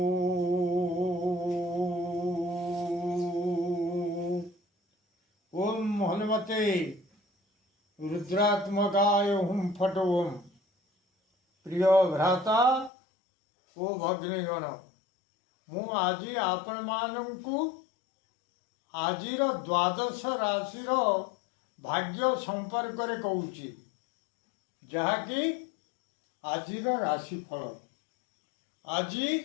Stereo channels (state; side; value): drops out; right; at 12.9 s